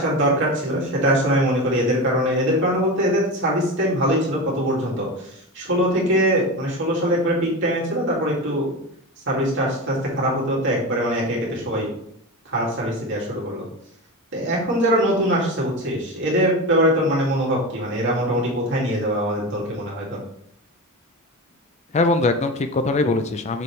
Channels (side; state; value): both; normal; correlation 0.24